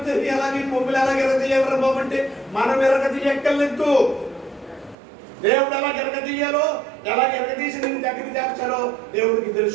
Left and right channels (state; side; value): drops out; left; at 5.0 s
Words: ఎలాగే కొమ్ములు ఎలాగ ఎరగదీయాలరా బాబు అంటే మనం ఎరగదీయక్కర్లేదు. దేవుడు ఎలా ఎరగదీయాలో, ఎలా ఎరగదీసి నేను దగ్గరికి చేర్చాలో దేవుడికి